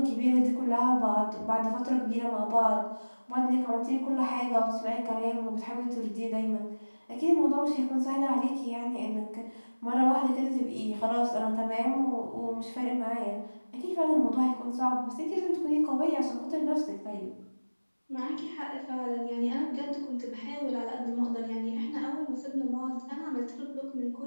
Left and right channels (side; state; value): both; inverted; correlation -1.00